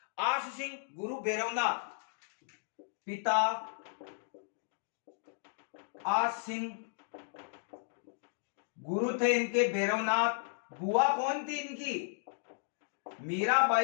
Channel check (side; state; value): right; silent; digital silence